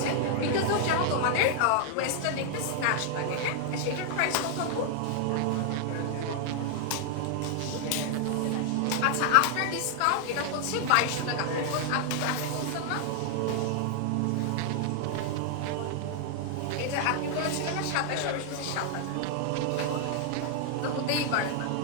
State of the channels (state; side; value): different; both; correlation 0.00